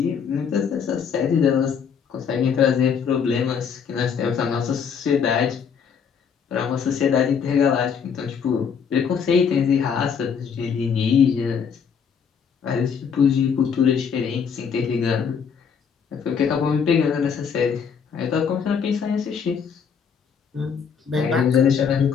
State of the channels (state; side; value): quieter; right; 6.8 dB